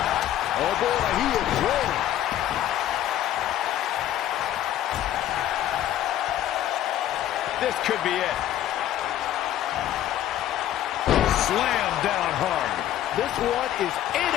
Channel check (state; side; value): quieter; right; 12.2 dB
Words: Oh boy, he is rolling. This could be it. Slam down hard. This one is